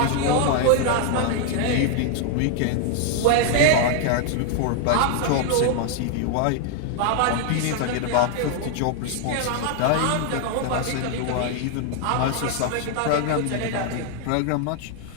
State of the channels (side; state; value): both; different; correlation 0.00